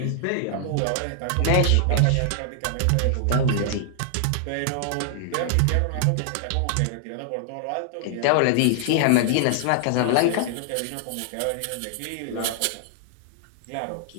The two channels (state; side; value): different; both; correlation -0.01